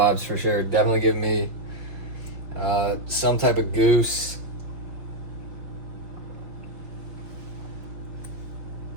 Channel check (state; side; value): late; left; 5.7 ms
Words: for sure. Definitely give me some type of goose.